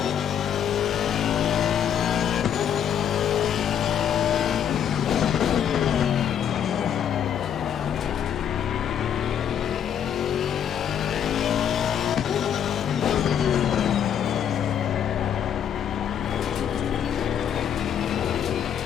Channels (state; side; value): quieter; right; 9.0 dB